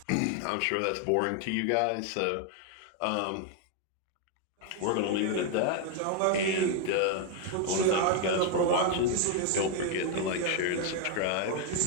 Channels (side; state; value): both; different; correlation 0.01